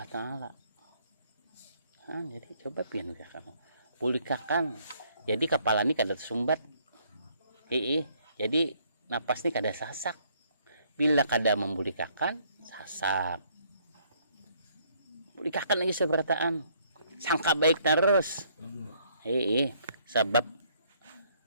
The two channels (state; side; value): inverted; both; correlation -0.66